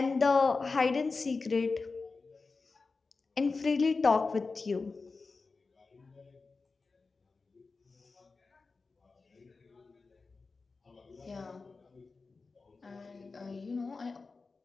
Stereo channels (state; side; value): quieter; right; 4.1 dB